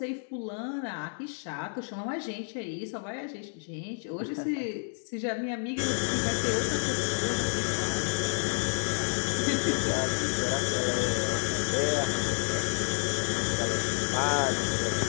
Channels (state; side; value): silent; right; 58 dB below the other